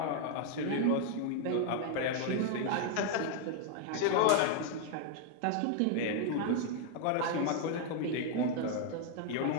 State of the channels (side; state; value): both; different; correlation 0.00